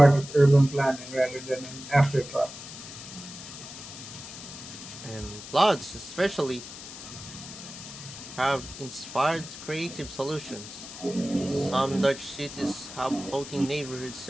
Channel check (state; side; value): noise; left; hiss, 12 dB below the sound